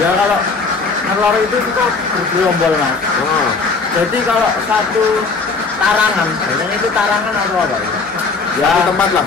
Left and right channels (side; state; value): right; quieter; 4.3 dB